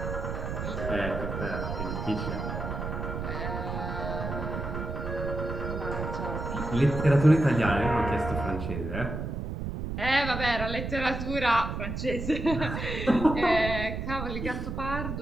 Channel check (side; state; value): right; noise; rumble, 4 dB below the sound